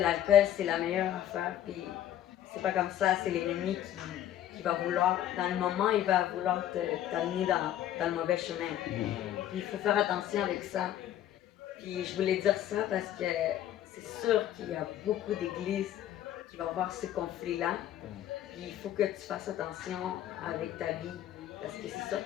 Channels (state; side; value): quieter; right; 11.8 dB